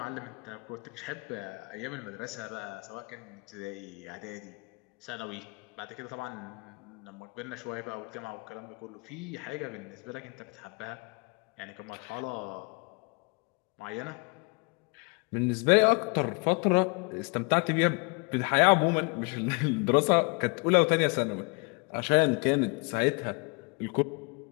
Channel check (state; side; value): quieter; right; 31.7 dB